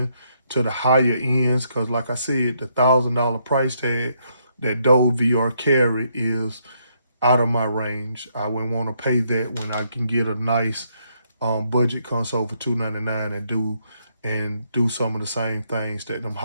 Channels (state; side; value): inverted; both; correlation -0.74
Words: to the higher ends, because like I said, the $1,000 price tag that Dove VR carry is out of my range. I wouldn't want to pay that when I can get a nice budget console for $299 and do some of the same things that them